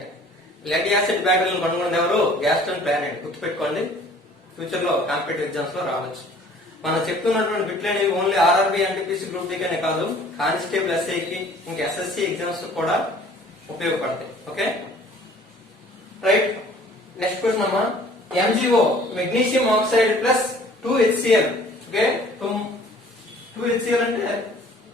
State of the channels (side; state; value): both; normal; correlation 0.52